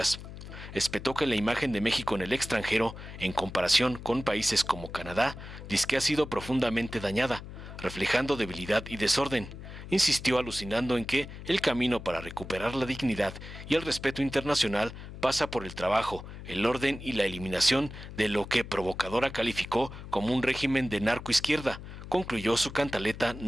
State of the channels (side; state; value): left; noise; hum, 12 dB below the sound